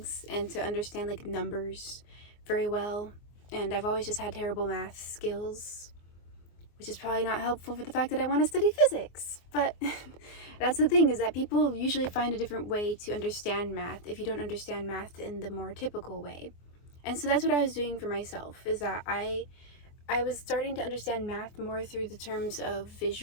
and to understand like numbers very well, and I've always just had terrible math skills, which is probably not helpful for the fact that I want to study physics. But that's the thing, is that people usually find a different way to understand math if you don't understand math in the more typical way. And so that's what I was doing for myself, is that I was starting to understand math more through the terms of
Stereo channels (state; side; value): late; right; 24 ms